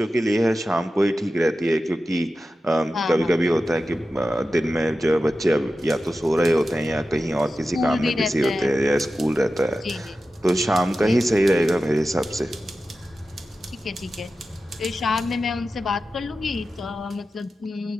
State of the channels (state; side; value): normal; both; correlation 0.93